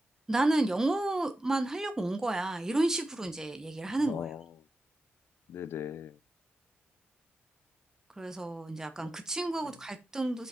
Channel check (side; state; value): both; normal; correlation 0.92